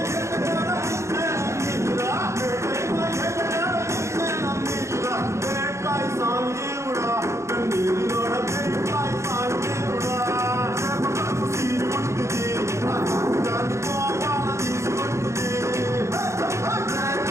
బేట్కాయ్ సాంజీవుడా కన్నీరులోడ బేట్కాయ్ సాంజీవుడా సీరు ముట్టుది గోపాల తీసుకొట్టుది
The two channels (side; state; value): left; late; 0.14 ms